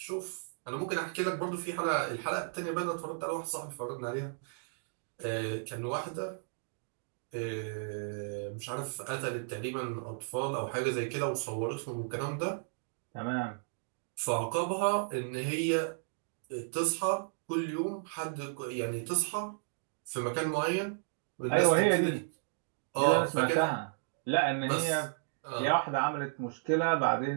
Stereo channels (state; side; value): silent; left; digital silence